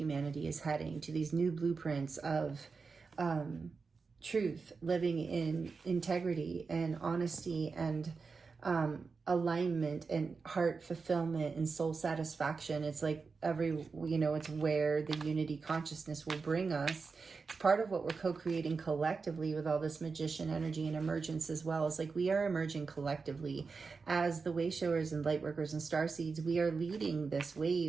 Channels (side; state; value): left; quieter; 4.7 dB